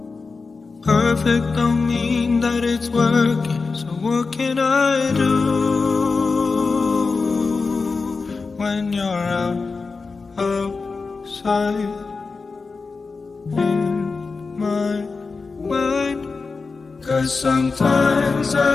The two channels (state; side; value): quieter; right; 4.3 dB